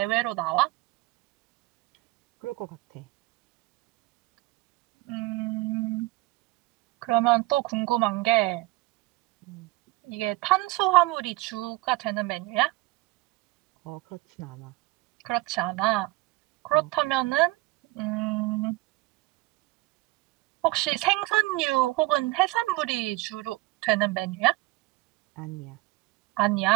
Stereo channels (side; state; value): left; quieter; 20.6 dB